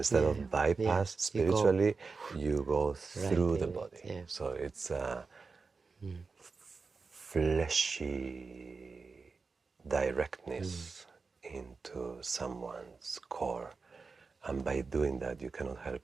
of bypass spiritually, you go through the body. Yeah. So it's a fleshy directness into someone's core. And by doing that, you cannot help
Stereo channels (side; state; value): left; quieter; 4.5 dB